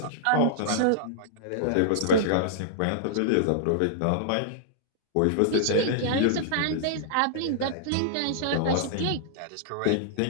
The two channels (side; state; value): both; different; correlation -0.01